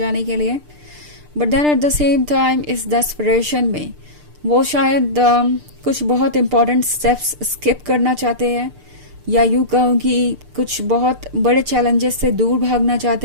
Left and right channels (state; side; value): late; left; 6.7 ms